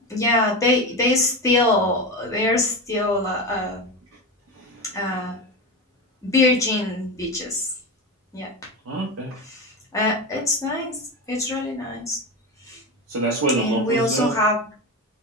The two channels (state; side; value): normal; both; correlation 0.21